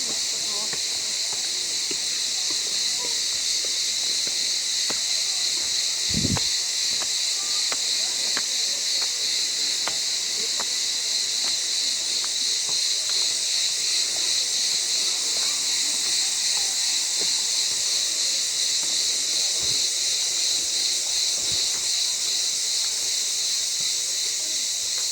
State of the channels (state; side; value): identical; both; correlation 1.00